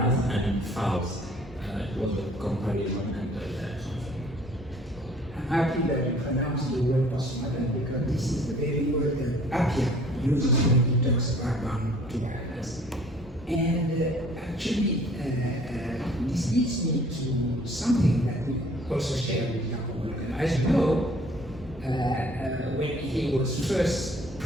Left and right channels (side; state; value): both; normal; correlation 0.55